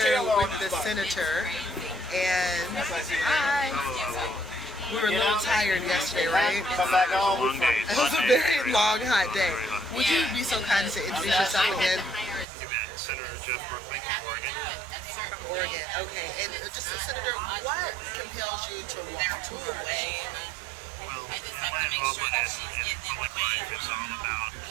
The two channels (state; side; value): drops out; left; at 12.5 s